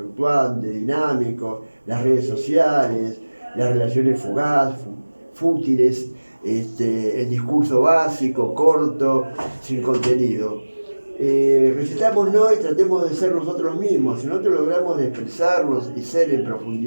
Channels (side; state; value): both; inverted; correlation -1.00